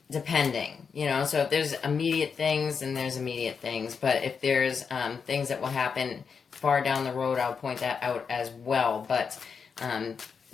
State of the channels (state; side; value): quieter; right; 6.0 dB